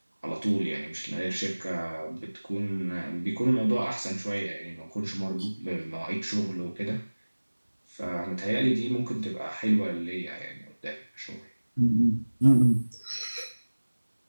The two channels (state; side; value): inverted; both; correlation -1.00